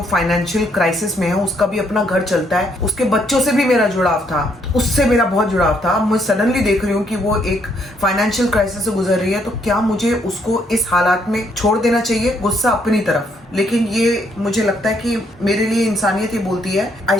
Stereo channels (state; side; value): normal; both; correlation 0.71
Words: फाइनेंशियल क्राइसिस में है, उसका भी अपना घर चलता है, उसके बच्चों से भी मेरा जुड़ाव था, उससे मेरा बहुत जुड़ाव था। मैं सडनली देख रही हूँ कि वो एक फाइनेंशियल क्राइसिस से गुजर रही है, तो क्या मुझे उसको इस हालात में छोड़ देना चाहिए? गुस्सा अपनी तरफ, लेकिन ये मुझे लगता है कि मेरे लिए इंसानियत ये बोलती है I